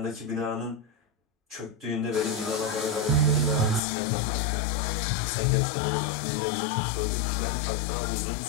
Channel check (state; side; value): drops out; right; at 3.8 s